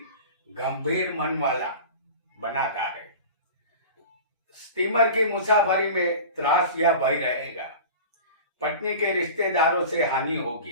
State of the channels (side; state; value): both; inverted; correlation -0.36